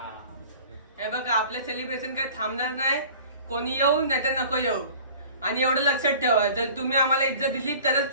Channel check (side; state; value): both; inverted; correlation -0.45